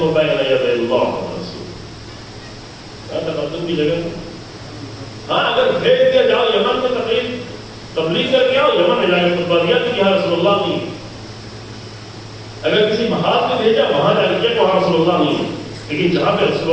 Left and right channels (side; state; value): both; identical; correlation 1.00